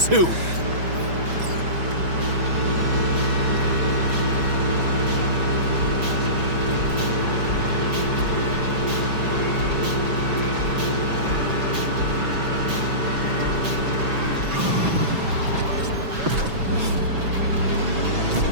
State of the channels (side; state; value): left; late; 6.1 ms